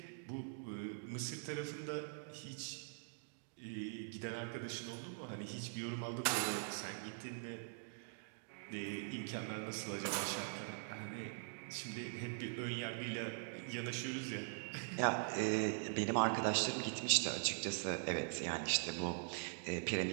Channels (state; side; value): silent; left; digital silence